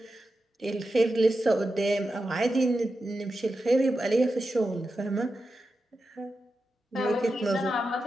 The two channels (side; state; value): both; normal; correlation 0.90